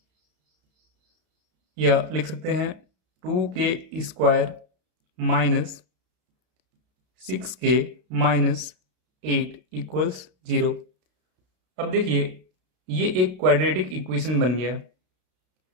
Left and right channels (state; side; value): late; left; 32 ms